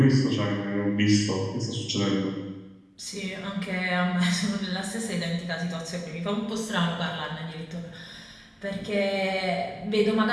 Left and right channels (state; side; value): identical; both; correlation 1.00